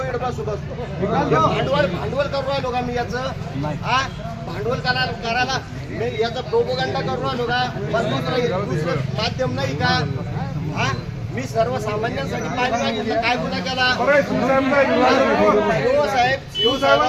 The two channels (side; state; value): both; identical; correlation 1.00